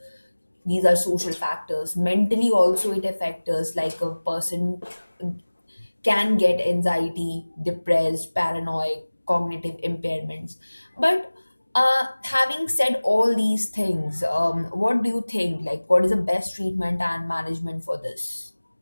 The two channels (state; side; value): inverted; both; correlation -1.00